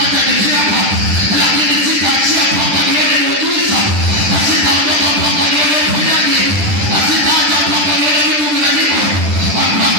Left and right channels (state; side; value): late; left; 10 ms